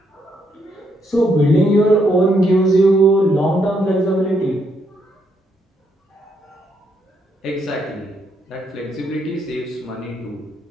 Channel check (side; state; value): both; normal; correlation 0.76